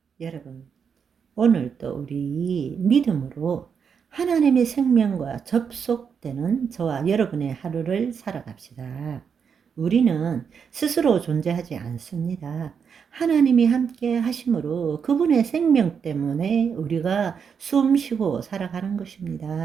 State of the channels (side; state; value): left; quieter; 6.7 dB